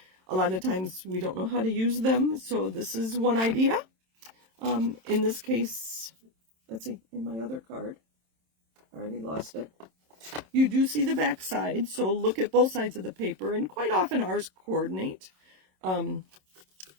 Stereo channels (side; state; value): left; late; 27 ms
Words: A lot of times we don't know how to use them. So this is one idea. In this case, let's see, in my other card, I already lost it. You do see the back side, so look at both sides of the paper, and quite often ours coordinate.